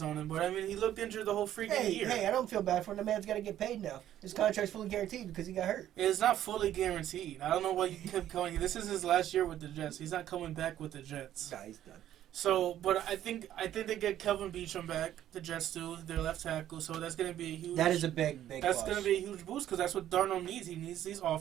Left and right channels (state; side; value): quieter; left; 11.8 dB